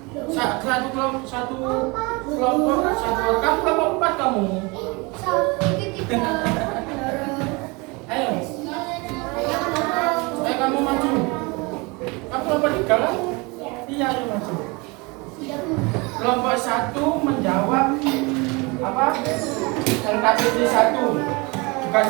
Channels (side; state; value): left; quieter; 27.0 dB